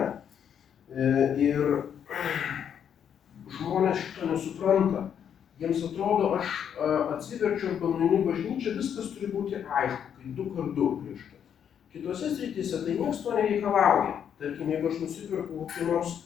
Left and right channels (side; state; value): right; quieter; 8.5 dB